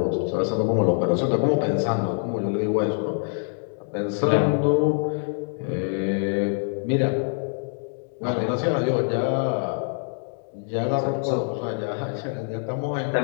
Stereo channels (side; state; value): right; silent; 62 dB below the other